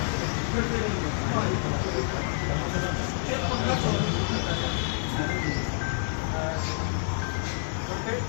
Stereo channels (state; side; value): silent; right; 59 dB below the other